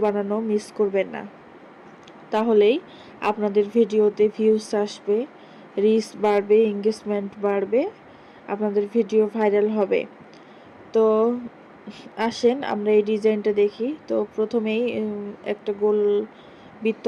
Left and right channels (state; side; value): identical; both; correlation 1.00